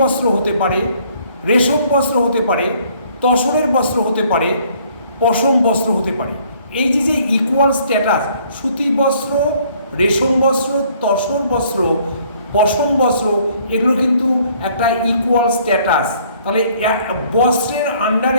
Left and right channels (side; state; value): both; inverted; correlation -0.61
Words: বস্ত্র হতে পারে, রেশম বস্ত্র হতে পারে, তসরের বস্ত্র হতে পারে, পশম বস্ত্র হতে পারে। এই যে ইকুয়াল স্ট্যাটাস, সুতি বস্ত্র, রেশম বস্ত্র, তসর বস্ত্র, পশম বস্ত্র, এগুলো কিন্তু একটা ইকুয়াল স্ট্যাটাস। তাহলে বস্ত্রের